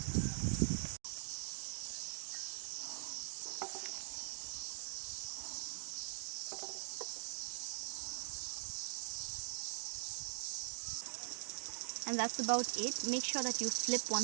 And that's about it. Make sure that you flip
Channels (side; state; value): left; silent; digital silence